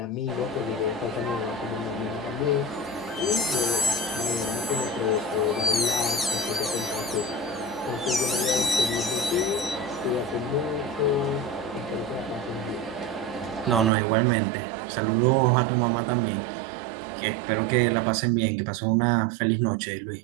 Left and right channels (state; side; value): drops out; left; at 13.9 s